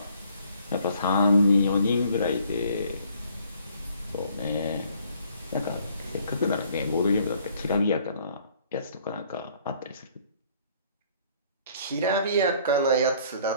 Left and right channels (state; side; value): inverted; both; correlation -0.60